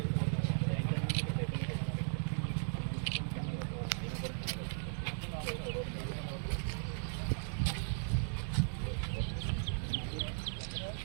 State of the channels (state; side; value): silent; left; digital silence